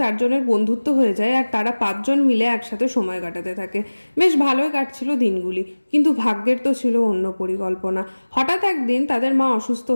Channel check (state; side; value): inverted; both; correlation -1.00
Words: জনের বন্ধুত্ব হয়ে যায় আর তারা 5 জন মিলে একসাথে সময় কাটাতে থাকে। বেশ ভালোই কাটছিল দিনগুলি, কিন্তু ভাগ্যের তো ছিল অন্য পরিকল্পনা। হঠাৎ একদিন তাদের মা অসুস্থ